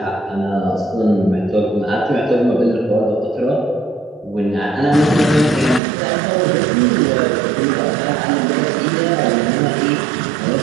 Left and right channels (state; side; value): drops out; left; at 5.8 s